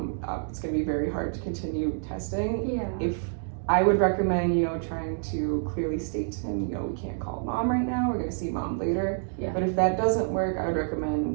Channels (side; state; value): left; silent; digital silence